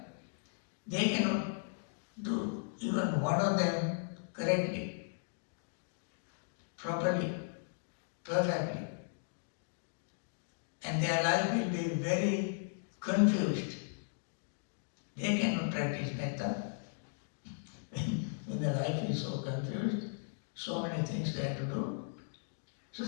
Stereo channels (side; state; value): right; silent; digital silence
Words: they cannot do even one of them correctly, properly, perfectly. And their life will be very confused. They cannot practice metta when the life is so confused, so many things they have to do. So